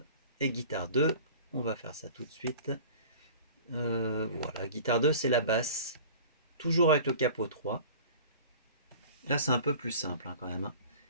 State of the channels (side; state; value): both; inverted; correlation -0.42